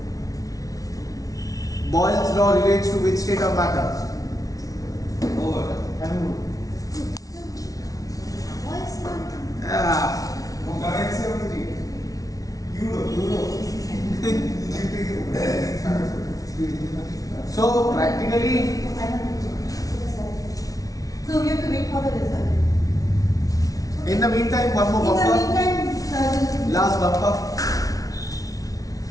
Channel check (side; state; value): right; late; 0.18 ms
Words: Boyle's law relates to which state of matter? Over. What's not? Currency of Egypt. Euro. So practically, So we have to wait for the result. in the meantime, one more In the bumper. meantime, Last bumper.